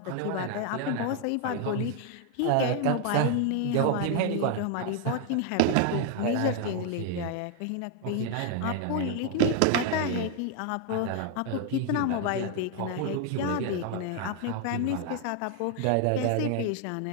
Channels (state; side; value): different; both; correlation 0.01